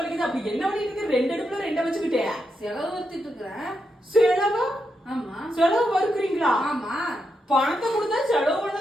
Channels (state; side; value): normal; both; correlation 0.84